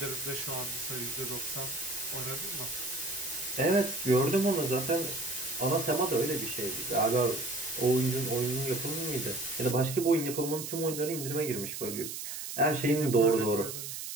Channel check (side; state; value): right; noise; hiss, 7 dB below the sound